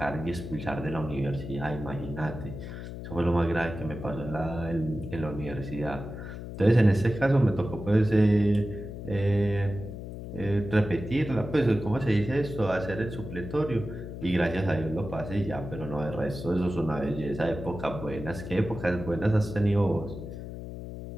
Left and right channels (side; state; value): left; noise; hum, 9 dB below the sound